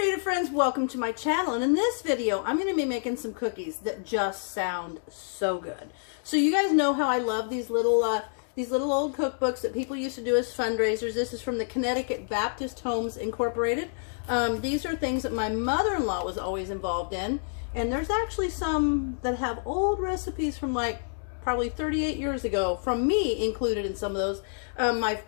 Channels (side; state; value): right; silent; 59 dB below the other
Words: friends, welcome to my channel, and in this video I'm going to be making some cookies that just sound so good. So you guys know how I love these little old cookbooks that people used to do as fundraisers. This is from the Connecticut Baptist Homes Incorporated. These are things that my mother-in-law was always involved in, and there's actually some that have old recipes from like probably 38 years ago, from me included in some of those.